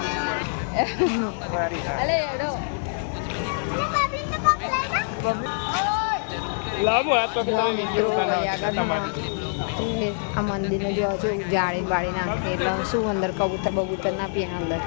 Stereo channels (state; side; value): silent; right; 57 dB below the other